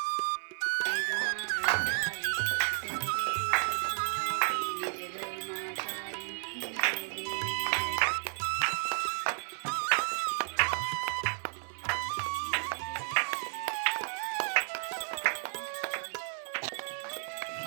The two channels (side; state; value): left; silent; digital silence